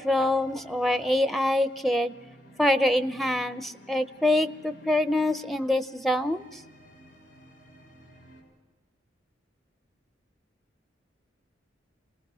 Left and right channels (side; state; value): both; normal; correlation 0.84